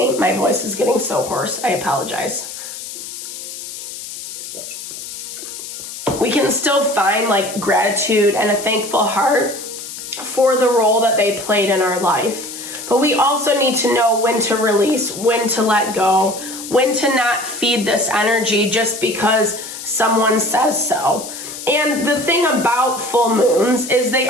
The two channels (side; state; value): left; noise; hiss, 10 dB below the sound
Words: my voice is getting so hoarse. I apologize. We can still find like gratitude and a thankful heart for the role that they played in our life. But we also need to know when to release, when to let go, when to not feed this energy just because someone says so. And the thing about full moons is they